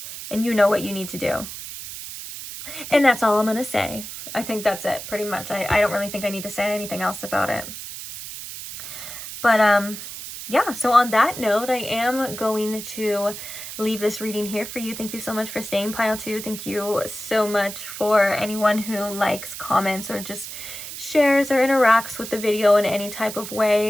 and you know what you need to do. And that's all I'm going to say. I think that's it, pretty much. I don't really think I need to say anything else about it. But, yeah, so on that note, I am going to leave this reading here for you. Thank you so much for staying, Pile 2. Thank you so much for anyone who likes, comments, or just shares or interacts with the video in any type of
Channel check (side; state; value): right; noise; hiss, 10 dB below the sound